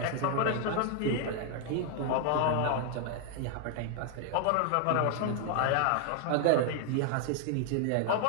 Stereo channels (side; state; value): both; different; correlation 0.00